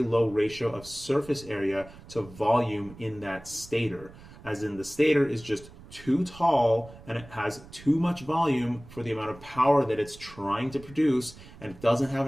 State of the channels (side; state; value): right; noise; rumble, 19 dB below the sound